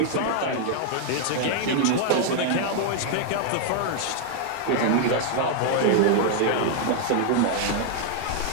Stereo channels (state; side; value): different; both; correlation 0.00